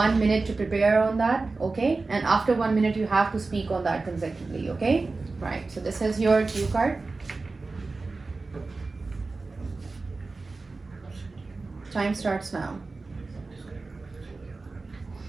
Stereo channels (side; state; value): left; quieter; 3.7 dB